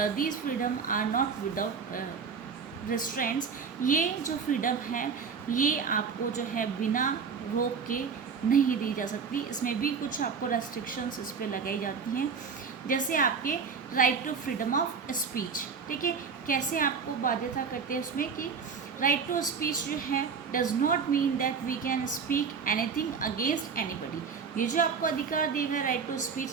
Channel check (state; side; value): quieter; left; 5.9 dB